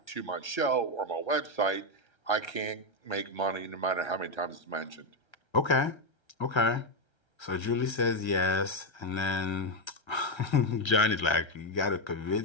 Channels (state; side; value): late; right; 1.3 ms